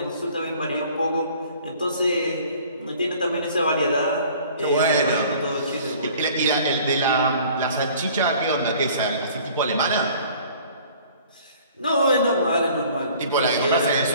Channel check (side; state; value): both; inverted; correlation -0.52